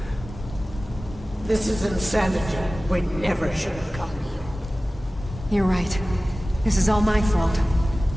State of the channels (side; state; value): both; normal; correlation 0.97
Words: This is insanity. We never should have come here. You're right. This is all my fault.